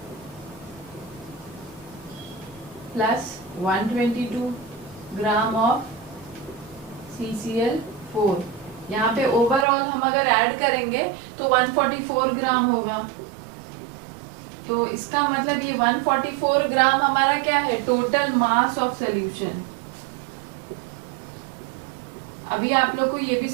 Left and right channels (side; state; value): left; drops out; at 9.7 s